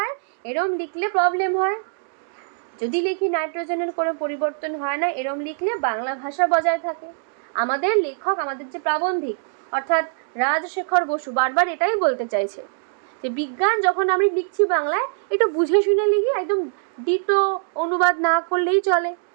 এরম লিখলে প্রবলেম হয়। যদি লিখি নাইট্রোজেনের কোনো পরিবর্তন হয় না, এরম লিখলে বাংলা ভাষা বজায় থাকে। আমাদের লেখক, আমাদের যে প্রাবন্ধিক অর্থাৎ রাজশেখর বসু বারবার এটাই বলতে চাইছে যে বিজ্ঞান যখন আমি লিখছি বাংলায়, একটু বুঝে শুনে লিখি, একদম ডিটো অনুবাদ না করলেই চলে।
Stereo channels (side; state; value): left; silent; digital silence